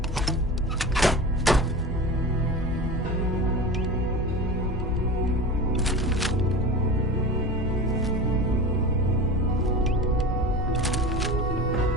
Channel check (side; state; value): both; normal; correlation 0.30